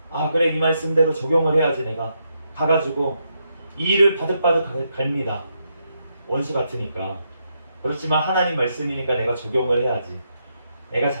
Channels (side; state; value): both; inverted; correlation -0.80